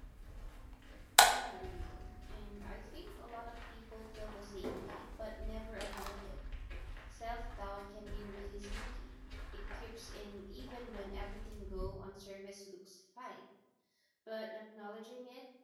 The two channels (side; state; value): both; identical; correlation 1.00